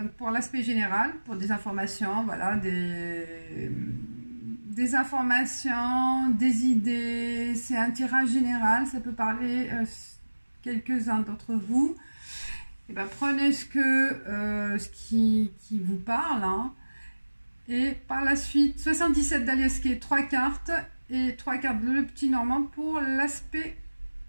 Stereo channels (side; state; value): both; inverted; correlation -1.00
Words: pour l'aspect général, pour des informations, voilà, des informations, des idées, c'est un tirage général, ça peut parler quelques-uns d'entre vous. Et ben, prenez ce qui vous parle, hein. Et par la suite 77 d'Aliasquet, 3 cartes et 3 cartes de le petit normand pour l'aspect